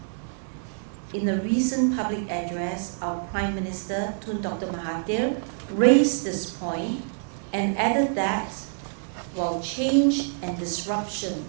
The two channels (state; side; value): silent; left; 61 dB below the other